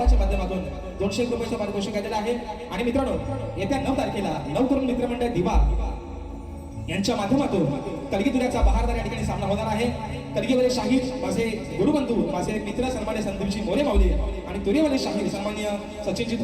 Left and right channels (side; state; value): both; identical; correlation 1.00